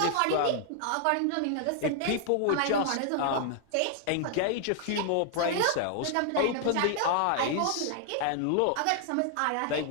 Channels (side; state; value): both; different; correlation 0.00